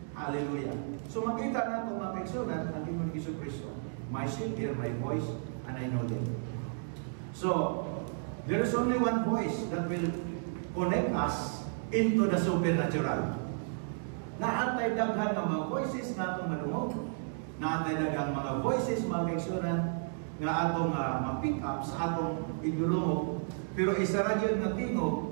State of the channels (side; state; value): left; silent; digital silence